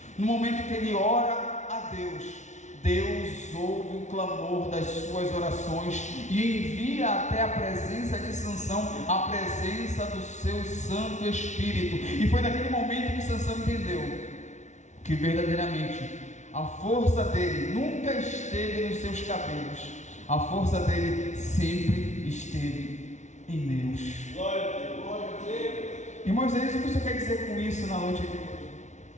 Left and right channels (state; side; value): late; right; 0.34 ms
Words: no momento que ele ora a Deus, Deus ouve o clamor das suas orações e envia até a presença de Sansão, a presença do seu Santo Espírito. E foi naquele momento que Sansão entendeu que verdadeiramente a força dele nunca esteve nos seus cabelos, a força dele sempre esteve em Deus. Irmãos, é isso que você quer dizer com isso na noite de hoje?